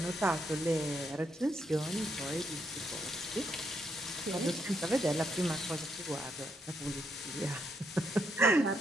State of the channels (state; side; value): normal; both; correlation 0.76